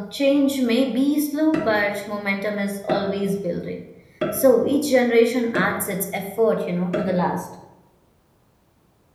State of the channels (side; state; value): both; identical; correlation 1.00